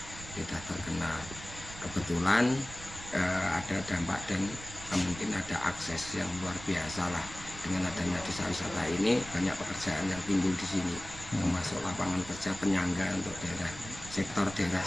terkenal. Kebetulan ada dampak dan mungkin ada akses yang luar biasa lah. Dengan adanya desa wisata ini banyak pekerjaan yang timbul di sini, termasuk lapangan kerja penyangga untuk sektor daerah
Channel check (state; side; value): noise; right; rumble, 14 dB below the sound